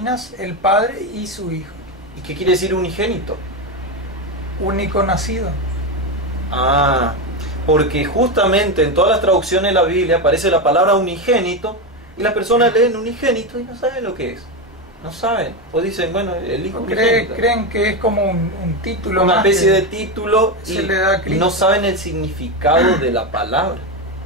el Padre y su Hijo. ¿Y qué quiere decir unigénito? Único nacido. Porque justamente en todas las traducciones de la Biblia aparece la palabra unigénito y las personas leen unigénito y no saben lo que es. No saben. O dicen, bueno, el Hijo unigénito. Creen que es como un título. Una especie de título y no saben el significado de la palabra.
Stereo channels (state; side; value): normal; both; correlation 0.13